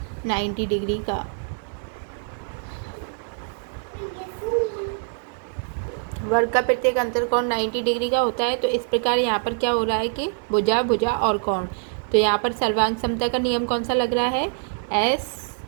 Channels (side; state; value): left; silent; digital silence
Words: 90 डिग्री का। वर्ग का प्रत्येक अंतर कोण 90 डिग्री का होता है। तो इस प्रकार यहाँ पर क्या हो रहा है कि भुजा, भुजा और कोण, तो यहाँ पर सर्वांग समता का नियम कौन सा लग रहा है?